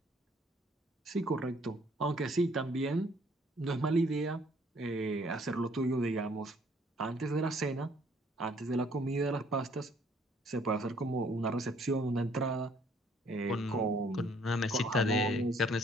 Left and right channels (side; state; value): both; normal; correlation 0.62